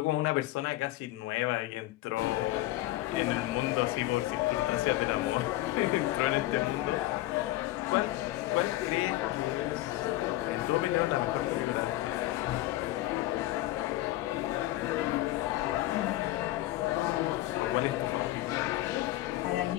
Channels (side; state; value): right; quieter; 16.5 dB